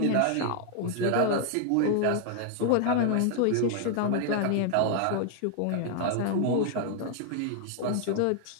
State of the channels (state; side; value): different; both; correlation 0.00